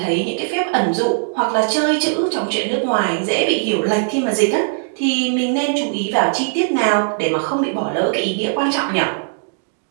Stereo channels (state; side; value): silent; left; digital silence